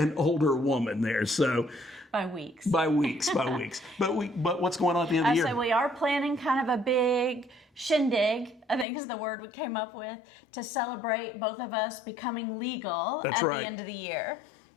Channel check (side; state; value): right; drops out; at 8.8 s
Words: older woman there. So by weeks. By weeks. But what's going on at the end of the year? So we are planning kind of a big shindig, I think is the word we came up with, to celebrate both of us becoming legal at the end of the year.